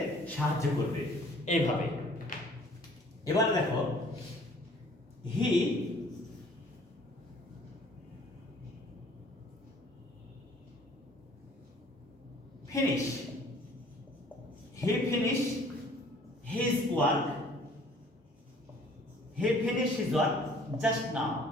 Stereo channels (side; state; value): both; normal; correlation 0.54